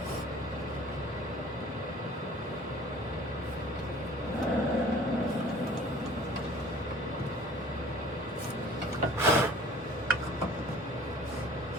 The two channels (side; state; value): both; normal; correlation 0.48